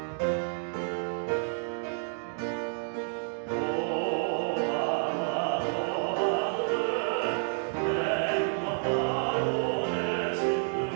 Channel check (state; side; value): silent; left; digital silence